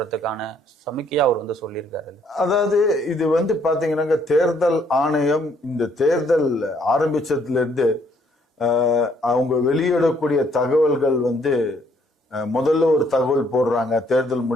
சமிக்கையா அவர் வந்து சொல்லியிருக்காரு. அதாவது இது வந்து பாத்தீங்கன்னா, தேர்தல் ஆணையம் இந்த தேர்தல் ஆரம்பிச்சதுல இருந்து அவங்க வெளியிடக்கூடிய தகவல்கள் வந்து முதல்ல ஒரு தகவல் போடுறாங்க தேர்தல்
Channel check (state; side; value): normal; both; correlation 0.66